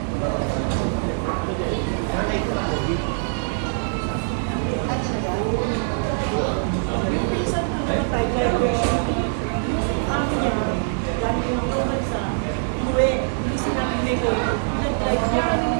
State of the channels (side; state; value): left; silent; digital silence